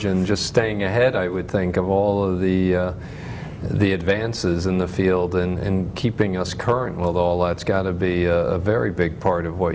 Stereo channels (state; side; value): identical; both; correlation 1.00